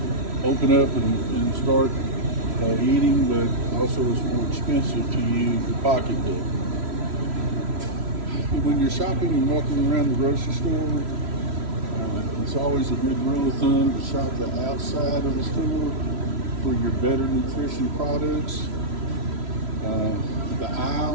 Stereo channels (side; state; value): left; late; 3.0 ms